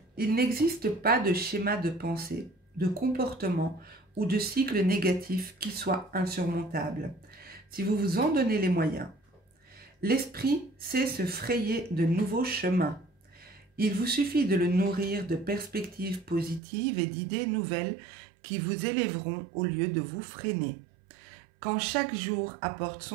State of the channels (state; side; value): drops out; left; at 16.6 s